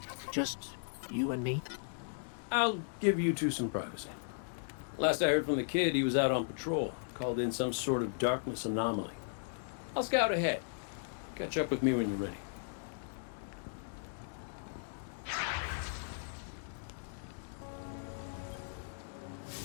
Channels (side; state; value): right; silent; digital silence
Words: Just you and me? I'll give you two some privacy. Last I heard from the kid, he was out on patrol, called in some sort of darkness anomaly. I'll scout ahead. Catch up with me when you're ready.